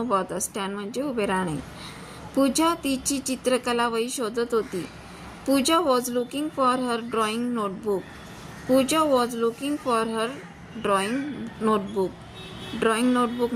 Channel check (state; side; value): identical; both; correlation 1.00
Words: होता. स्टँड म्हणजे उभे राहणे. पूजा तिची चित्रकला वही शोधत होती. पूजा was looking for her drawing notebook. Pooja was looking for her drawing notebook. Drawing notebook